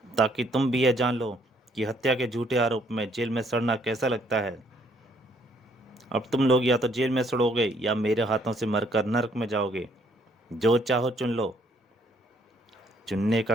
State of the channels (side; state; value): both; normal; correlation 0.66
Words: ताकि तुम भी यह जान लो कि हत्या के झूठे आरोप में जेल में सड़ना कैसा लगता है। अब तुम लोग या तो जेल में सड़ोगे या मेरे हाथों से मरकर नरक में जाओगे। जो चाहो चुन लो। चुनने का